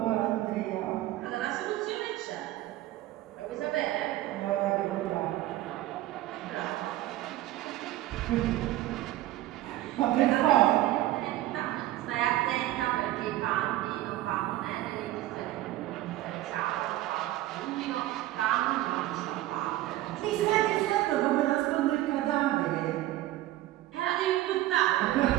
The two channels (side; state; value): left; quieter; 15.5 dB